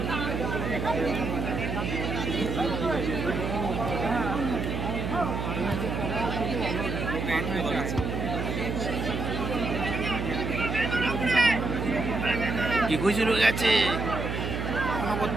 গুজে রয়ে গেছে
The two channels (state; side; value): noise; right; hum, 3 dB below the sound